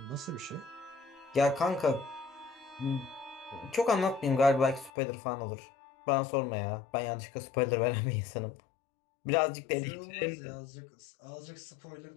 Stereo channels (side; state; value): right; drops out; at 4.9 s